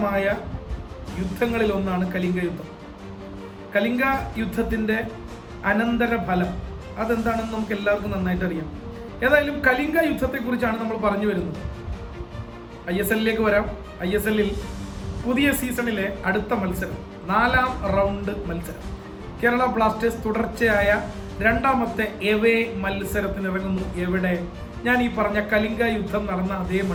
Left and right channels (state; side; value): identical; both; correlation 1.00